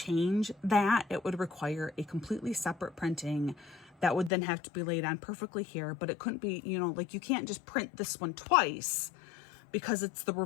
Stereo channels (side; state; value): right; drops out; at 4.3 s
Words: that. It would require a completely separate printing that would then have to be laid on perfectly here, but it couldn't be, you know, like, you can't just print this one twice because it's the